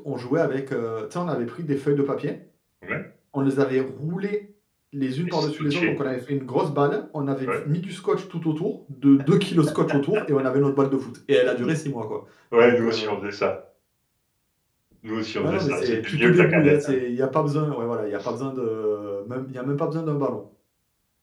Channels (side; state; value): both; identical; correlation 1.00